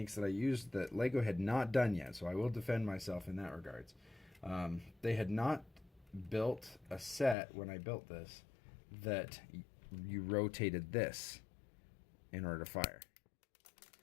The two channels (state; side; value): drops out; right; at 7.4 s